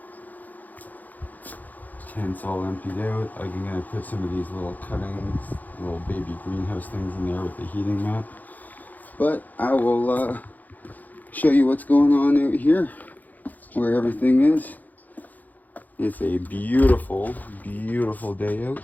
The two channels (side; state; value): right; late; 0.082 ms